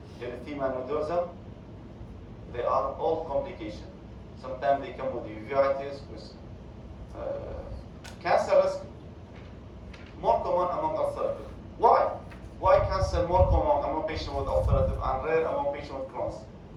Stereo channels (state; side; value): identical; both; correlation 1.00